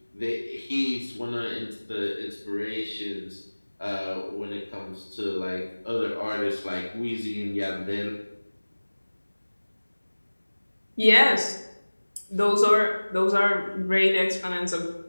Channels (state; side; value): inverted; both; correlation -1.00